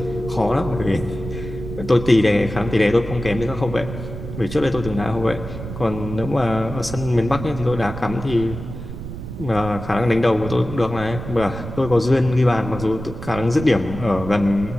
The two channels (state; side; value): noise; right; rumble, 9 dB below the sound